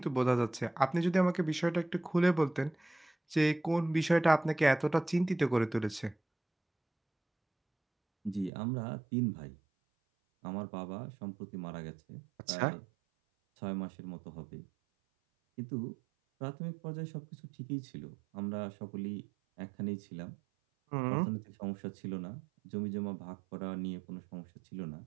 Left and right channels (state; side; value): drops out; left; at 8.5 s